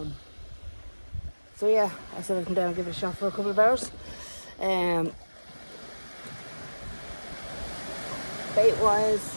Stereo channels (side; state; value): both; inverted; correlation -1.00